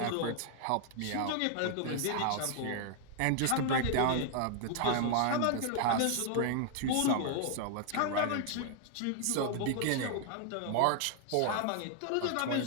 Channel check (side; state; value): both; different; correlation 0.00